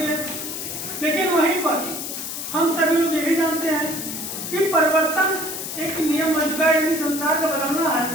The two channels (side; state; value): left; noise; hiss, 6 dB below the sound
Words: लेकिन वहीं पर हम सभी लोग यही जानते हैं कि परिवर्तन एक नियम बन चुका है, यानी संसार का बदलना है,